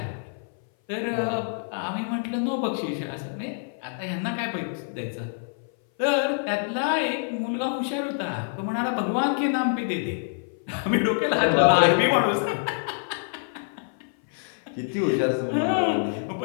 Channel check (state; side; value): silent; right; 58 dB below the other